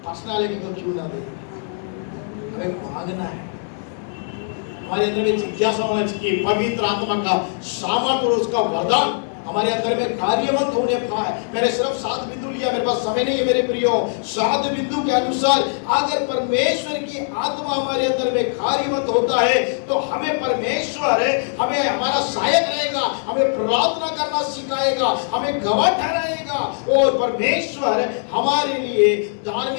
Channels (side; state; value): right; silent; 65 dB below the other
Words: पर्सनालिटी को क्यों ना देगा? हमें मांगना है, हमारे अंदर में जिज्ञासा होना चाहिए, पवित्र आत्मा का सामर्थ्य और उसका वरदान हमारे अंदर में कार्यवंत होने पाए। मैंने सिर्फ 7 बिंदु लिया, मेरे पास समय नहीं है मेरे प्रियो। 7 बिंदु के अनुसार अगर परमेश्वर की आत्मा हमारे अंदर में कार्यवंत होता है तो हमें परमेश्वर हमें हमारा सहायक रहेगा, हमें प्रार्थना करना सिखाएगा, हमें गवाह ठहराएगा और परमेश्वर हमारे लिए